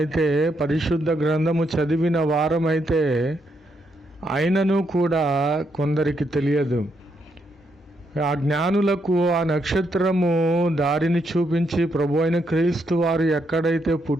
పరిశుద్ధ గ్రంథము చదివిన వారమైతే అయినను కూడా కొందరికి తెలియదు. ఆ జ్ఞానులకు ఆ నక్షత్రము దారిని చూపించి ప్రభు అయిన క్రీస్తు వారు ఎక్కడైతే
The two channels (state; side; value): normal; both; correlation 0.78